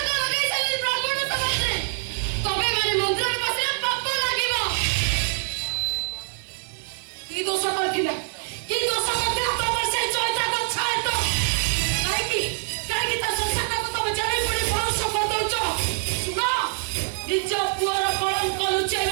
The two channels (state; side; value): silent; left; 55 dB below the other